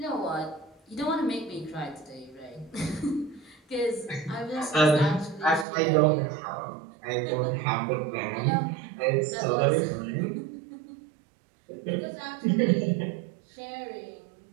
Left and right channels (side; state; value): left; drops out; at 5.7 s